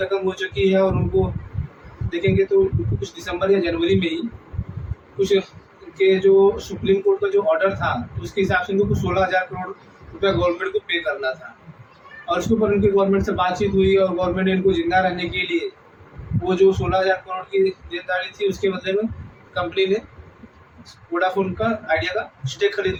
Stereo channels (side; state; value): both; identical; correlation 1.00